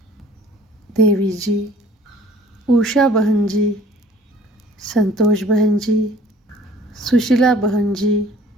देवी जी, उषा बहन जी, संतोष बहन जी, सुशीला बहन जी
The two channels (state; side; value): normal; both; correlation 0.53